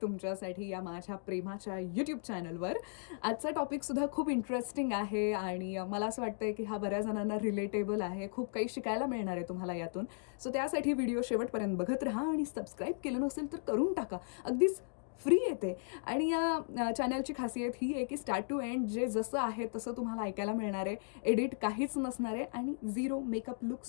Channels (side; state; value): right; silent; digital silence